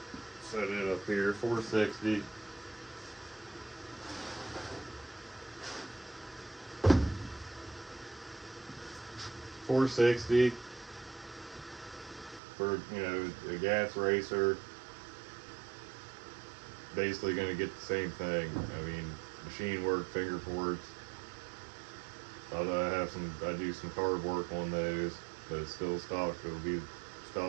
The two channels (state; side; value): drops out; left; at 12.4 s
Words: set it up here, 460. $460 for, you know, a gas racer. Basically going to get the same thing. I mean, machine work, finger ports. Although I do some carb work on those, but it's still stock. It'll be